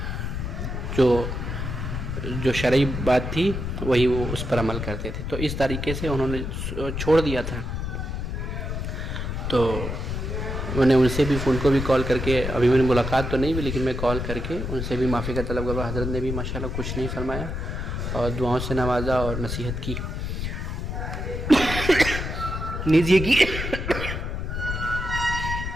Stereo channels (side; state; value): left; noise; rumble, 4 dB below the sound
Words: جو شرعی بات تھی وہی وہ اس پر عمل کرتے تھے۔ تو اس طریقے سے انہوں نے چھوڑ دیا تھا۔ تو میں نے ان سے بھی، ان کو بھی کال کر کے، ابھی میں نے ملاقات تو نہیں ہوئی لیکن میں کال کر کے ان سے بھی معافی کا طلب کرا۔ حضرت نے بھی ماشاءاللہ کچھ نہیں فرمایا اور دعاؤں سے نوازا اور نصیحت کی، نیز یہ کی